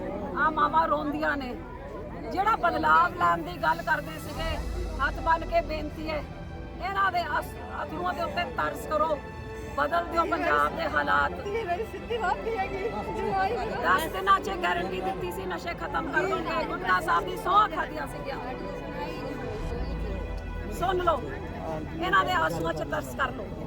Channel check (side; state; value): both; identical; correlation 1.00